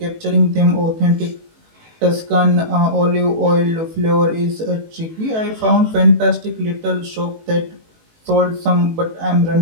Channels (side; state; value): left; late; 18 ms